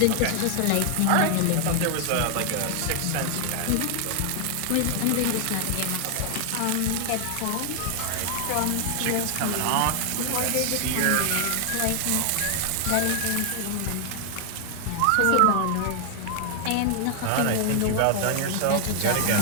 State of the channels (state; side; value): different; both; correlation 0.00